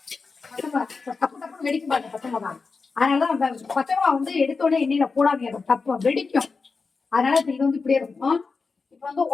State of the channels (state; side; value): quieter; right; 4.5 dB